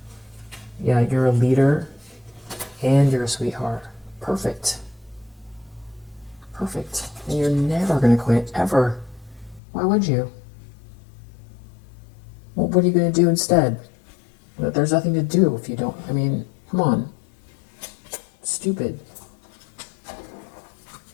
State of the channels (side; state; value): right; drops out; at 9.6 s